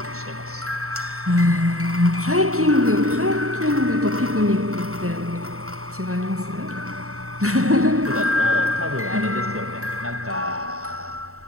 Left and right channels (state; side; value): late; left; 0.64 ms